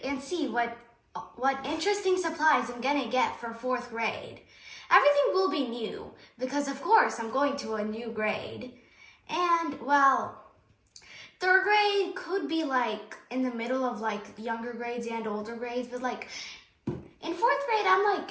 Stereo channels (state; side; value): identical; both; correlation 1.00